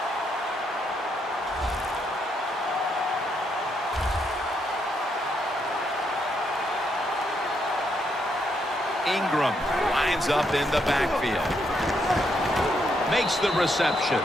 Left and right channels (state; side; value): normal; both; correlation 0.77